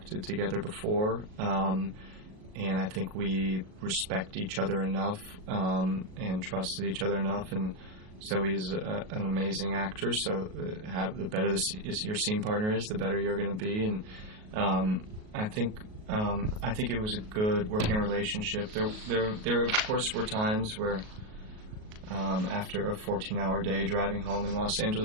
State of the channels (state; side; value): late; left; 38 ms